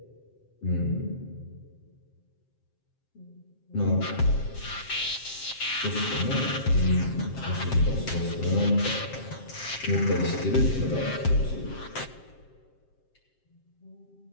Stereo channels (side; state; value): right; late; 7.6 ms